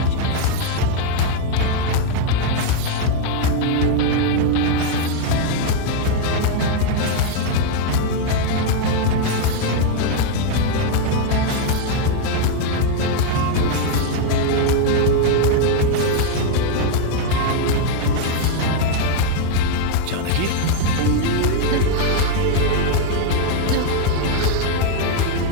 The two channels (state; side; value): different; both; correlation 0.00